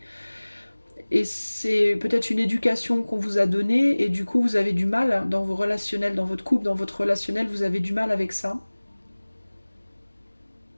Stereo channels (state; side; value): inverted; both; correlation -1.00